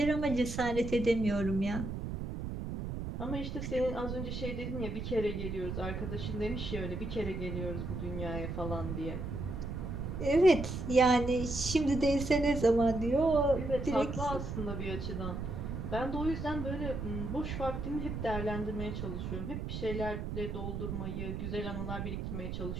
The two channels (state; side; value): noise; right; rumble, 5 dB below the sound